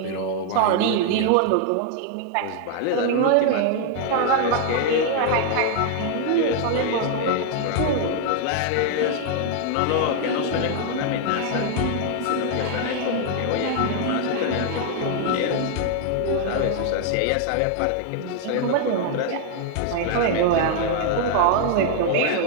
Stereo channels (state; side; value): different; both; correlation 0.00